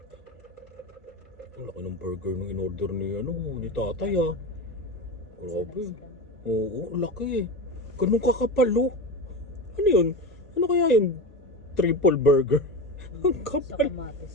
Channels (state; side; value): normal; both; correlation 0.22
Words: Ang laki ng burger nung in-order ni, ni tatay ah. Grabe. Oo, laki eh. Ganun kakapal oh. Ano yun? Ano kaya yun? Triple burger. Ang Sa kapal.